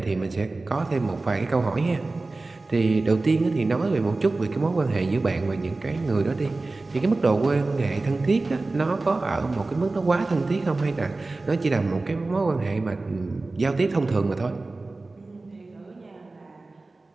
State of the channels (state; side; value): quieter; left; 3.3 dB